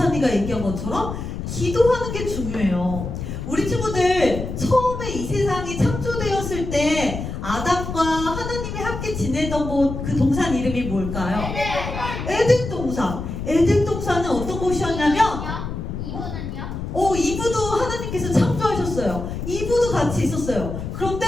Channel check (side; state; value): left; noise; rumble, 6 dB below the sound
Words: 얘기한 것처럼 기도하는 게 중요해요. 우리 친구들 처음에 이 세상이 창조되었을 때 아담과 하나님이 함께 지내던 그 동산 이름이 뭘까요? 에덴 동산. 에덴 동산은 어떤 곳이었냐면 이브도 하나님께서 창조하셨어요. 이브도 같이 있었어요.